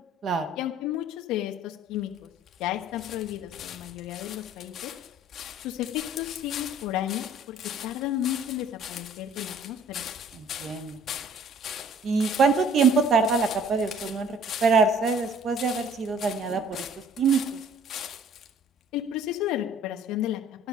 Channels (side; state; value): both; normal; correlation 0.54